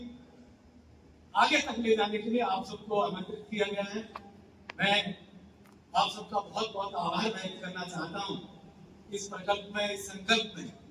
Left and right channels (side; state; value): both; identical; correlation 1.00